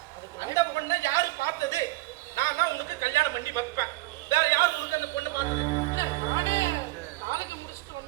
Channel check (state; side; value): quieter; left; 20.0 dB